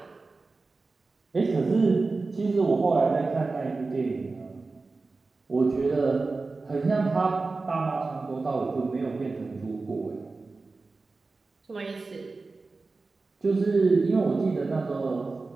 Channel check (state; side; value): quieter; left; 3.8 dB